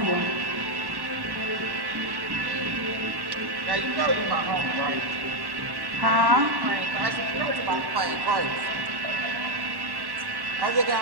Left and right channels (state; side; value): late; left; 1.1 ms